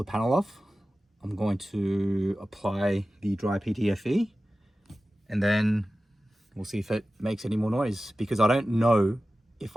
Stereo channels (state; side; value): normal; both; correlation 0.95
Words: panel off. I'm going to apply the dry PTFE, and then we'll see if it makes any more noise, because I don't know if